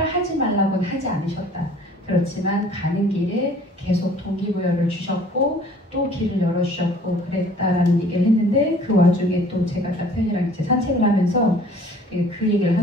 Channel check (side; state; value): both; normal; correlation 0.53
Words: 하지 말라고는 하지 않으셨다. 그렇지만 가는 길에 계속 동기부여를 주셨고 또 길을 열어주셨고 그랬다라는 얘기를 했는데 그 와중에 또 제가 남편이랑 이제 산책을 하면서 그 얘기를